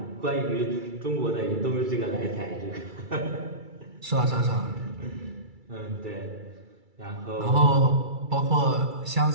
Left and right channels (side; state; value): left; late; 2.3 ms